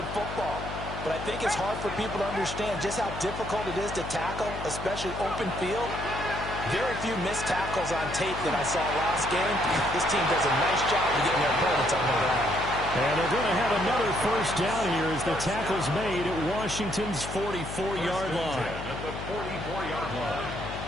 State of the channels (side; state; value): left; noise; hum, 9 dB below the sound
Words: football. But I think it's hard for people to understand just how difficult it is to tackle, especially open field. Very few missed tackles on tape that I saw last game. This team does a nice job of getting their opponents on the ground. And they're going to have another first down here as the tackle's made at Washington's 44-yard line. At the 44-yard line.